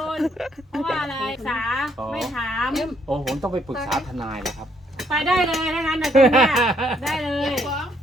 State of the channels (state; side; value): normal; both; correlation 0.70